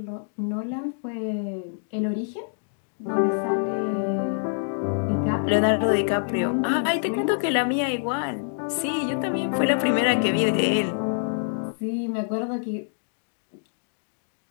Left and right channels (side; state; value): right; silent; digital silence